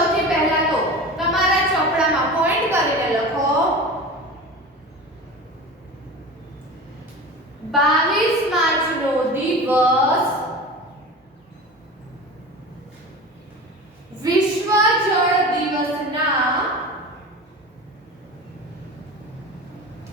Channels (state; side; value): normal; both; correlation 0.33